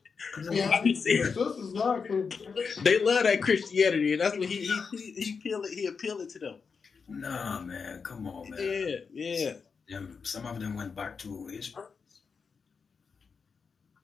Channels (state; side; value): quieter; right; 5.5 dB